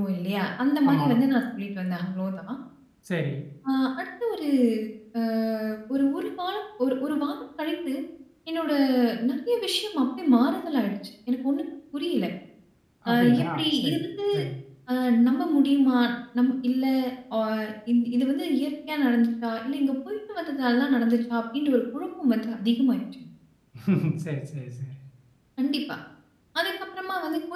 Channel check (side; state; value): both; identical; correlation 1.00